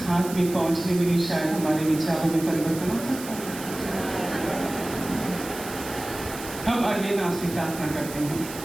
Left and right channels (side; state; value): right; noise; hiss, 12 dB below the sound